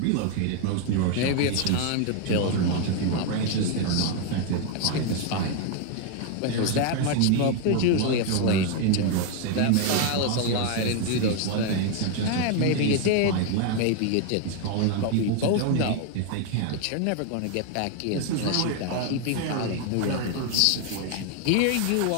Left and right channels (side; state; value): both; different; correlation 0.01